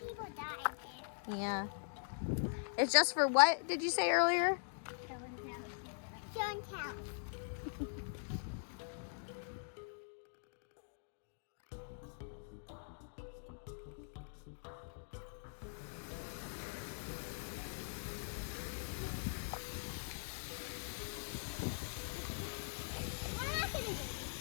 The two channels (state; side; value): silent; right; digital silence